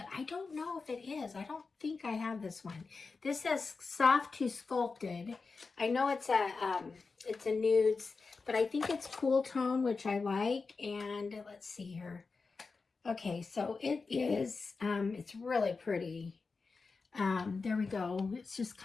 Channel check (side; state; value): right; quieter; 4.4 dB